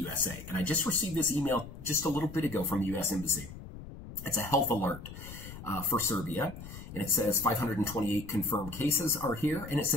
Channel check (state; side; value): noise; left; rumble, 12 dB below the sound